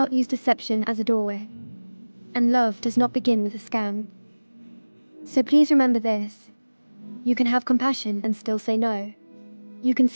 use deception as a doorway. And love does not begin with a scam. So please remember this. You can have compassion and still say no. You can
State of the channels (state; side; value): inverted; both; correlation -1.00